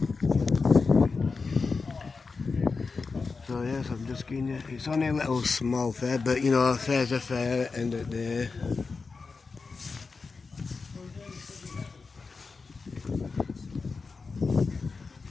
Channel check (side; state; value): right; quieter; 4.5 dB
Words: So yes, I'm just giving you. It's only a little small fair, but you know, a fair's a fair at the end of the day.